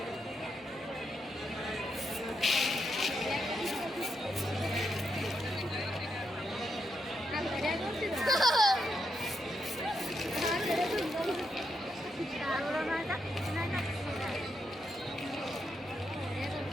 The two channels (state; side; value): normal; both; correlation 0.82